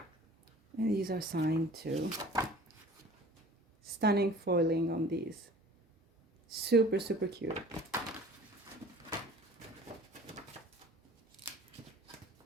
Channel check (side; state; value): both; normal; correlation 0.47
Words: And these are signed too. Stunning foiling on these. Super, super cute.